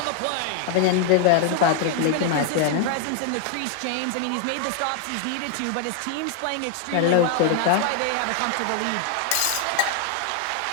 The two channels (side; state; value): both; different; correlation 0.00